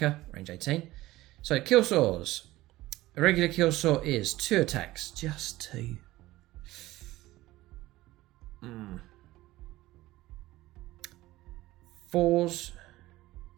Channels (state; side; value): quieter; left; 17.5 dB